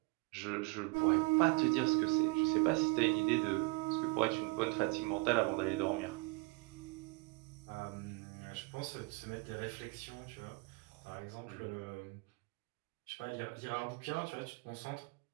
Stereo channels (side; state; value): left; quieter; 27.1 dB